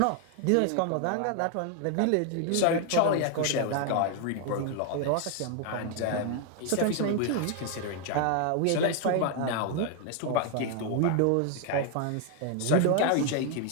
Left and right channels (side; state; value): both; different; correlation 0.00